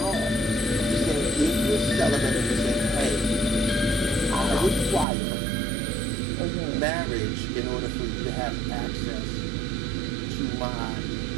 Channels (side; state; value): left; drops out; at 5.1 s